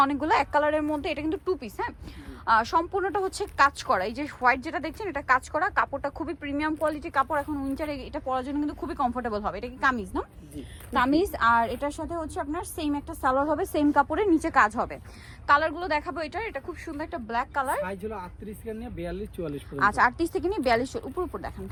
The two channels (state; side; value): identical; both; correlation 1.00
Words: অনেকগুলো। এক কালারের মধ্যে এটা কিন্তু টু পিস, হ্যাঁ। সম্পূর্ণটা কাজ করা। এই যে হোয়াইট যেটা দেখছেন, এটা কাজ করা। কাপড়টা খুবই প্রিমিয়াম কোয়ালিটির কাপড়। এখন উইন্টারে এটা পরার জন্য কিন্তু খুবই কমফোর্টেবল হবে। এটা কি কামিজ না? কামিজ। আর এটার সাথে আপনার সেম একটা সালোয়ার হবে, সেম কাপড়ের নিচে কাজ হবে। কালারগুলো দেখাবো। এটা খুব সুন্দর একটা ব্ল্যাক কালার। সাইজ হলো 38 থেকে নিয়ে 42 44 পর্যন্ত। আচ্ছা, 38 থেকে নিয়ে 42 উপর দেখান।